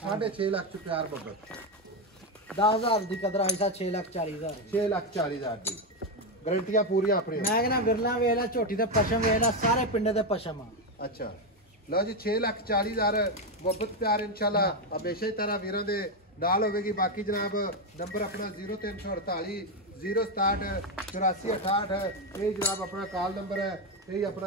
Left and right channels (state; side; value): normal; both; correlation 0.08